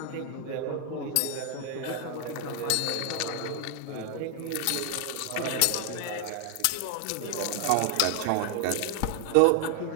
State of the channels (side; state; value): both; different; correlation 0.01